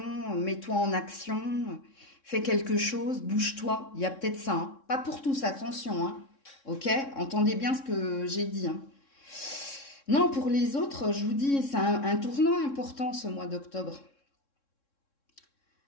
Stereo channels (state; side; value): late; right; 3.6 ms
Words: mets-toi en action, fais quelque chose, bouge-toi. Il y a peut-être ça. Hein. Pas pour tous, attention. Hein. Ok? Entendez bien ce que j'ai dit. Hein. Non, pour les autres, je vous dis, c'est un tournant important ce mois d'octobre.